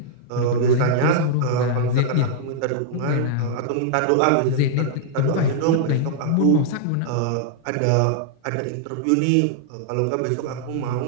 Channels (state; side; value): different; both; correlation -0.01